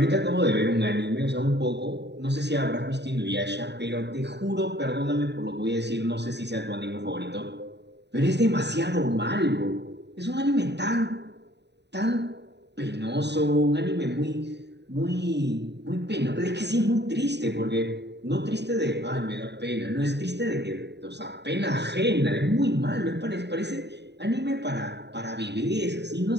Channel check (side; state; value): left; late; 0.50 ms